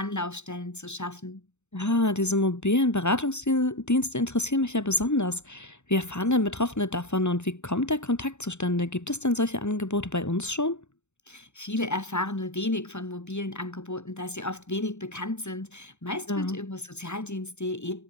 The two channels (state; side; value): late; right; 0.82 ms